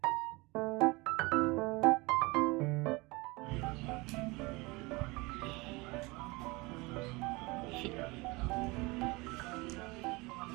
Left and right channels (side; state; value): left; quieter; 24.4 dB